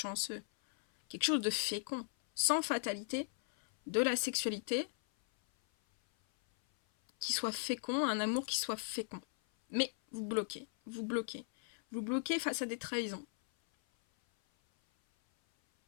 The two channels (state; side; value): silent; right; 53 dB below the other